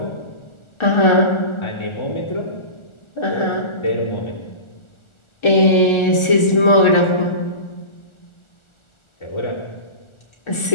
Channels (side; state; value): right; late; 1.4 ms